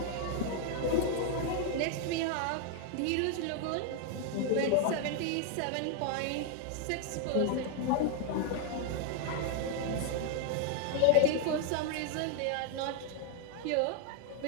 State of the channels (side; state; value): both; different; correlation 0.00